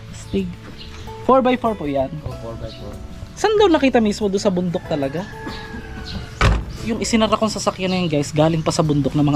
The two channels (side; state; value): both; identical; correlation 1.00